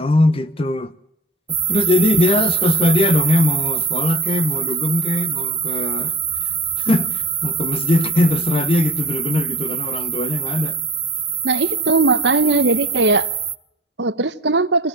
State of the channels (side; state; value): both; normal; correlation 0.39